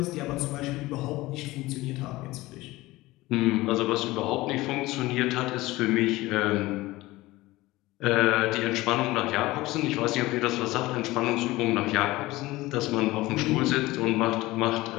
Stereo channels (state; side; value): quieter; right; 19.1 dB